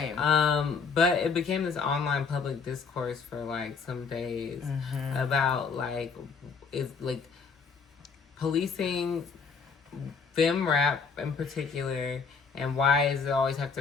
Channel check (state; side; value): quieter; right; 5.4 dB